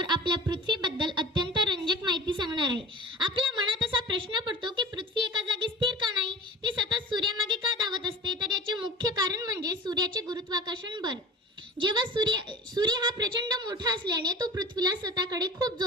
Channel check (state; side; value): normal; both; correlation 0.39